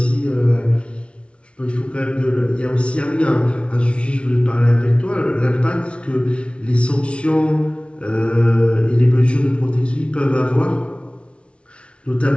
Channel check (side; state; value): right; late; 0.060 ms